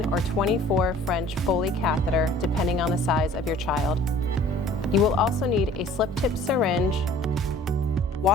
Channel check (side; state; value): both; normal; correlation 0.50